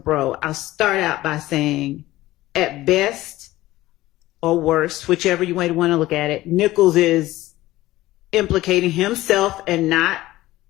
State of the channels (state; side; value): quieter; right; 16.8 dB